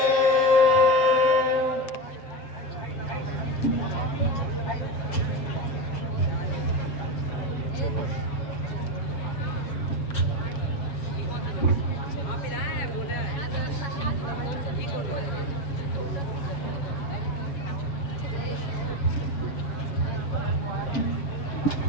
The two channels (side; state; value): right; late; 7.2 ms